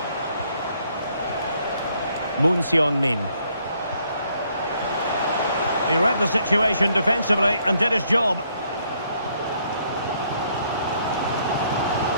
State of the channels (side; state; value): both; inverted; correlation -0.69